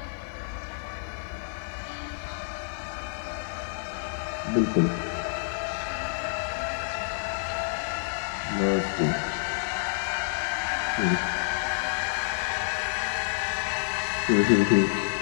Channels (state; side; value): silent; right; digital silence